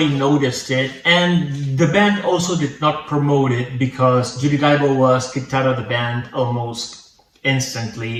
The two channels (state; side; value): identical; both; correlation 1.00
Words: noticed it. And the band also did not promote it because Judy Dyble was kicked out of the band almost